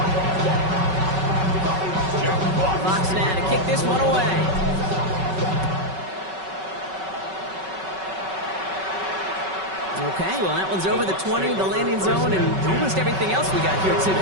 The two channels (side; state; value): left; late; 5.3 ms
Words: Fox now to kick this one away. Okay, well, that one's over the 20, the landing zone, and almost everything else we got here